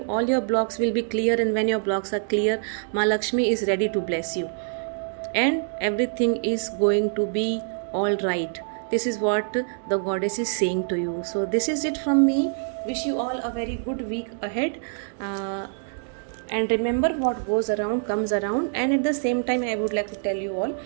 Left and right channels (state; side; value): silent; left; digital silence